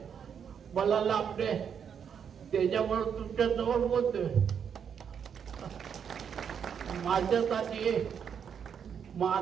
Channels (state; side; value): quieter; left; 7.6 dB